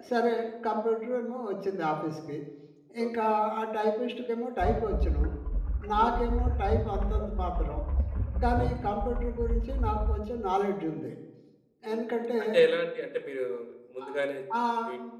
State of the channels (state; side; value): identical; both; correlation 1.00